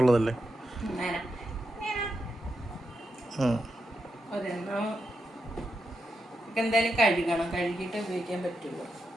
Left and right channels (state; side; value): normal; both; correlation 0.86